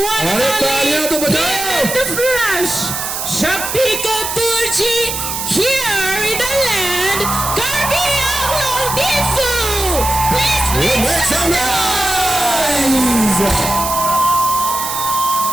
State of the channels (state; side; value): noise; right; hiss, 4 dB below the sound